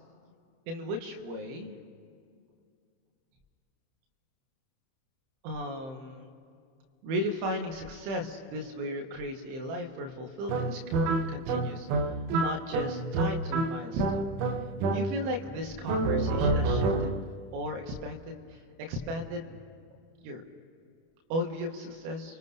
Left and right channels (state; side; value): late; left; 30 ms